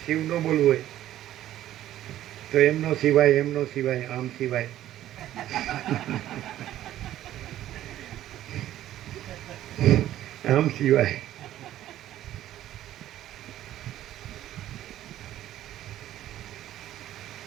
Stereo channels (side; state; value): left; quieter; 13.0 dB